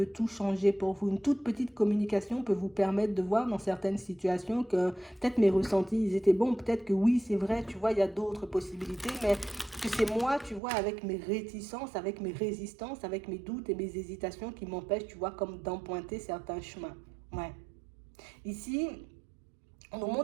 tout changer pour vous. Une toute petite communication peut vous permettre de voir dans certaines situations que peut-être mes ressentis, ils étaient bons. Peut-être que oui, c'est vrai, tu vois, il y a d'autres possibilités, mais que c'est moi, tu vois, avec mes réticences, avec mes résistances, avec mes doutes et mes hésitations qui m'empêchent, tu vois, comme d'emprunter certains chemins. Ouais. Ici, on nous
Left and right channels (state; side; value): drops out; left; at 10.6 s